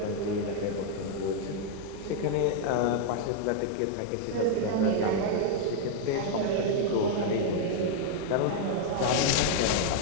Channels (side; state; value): both; different; correlation 0.00